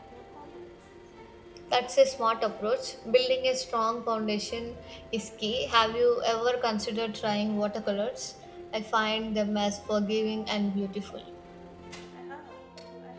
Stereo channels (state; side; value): identical; both; correlation 1.00